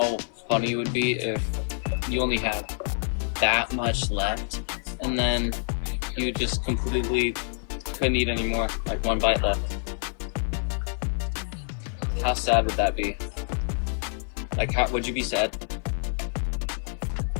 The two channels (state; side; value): silent; right; 56 dB below the other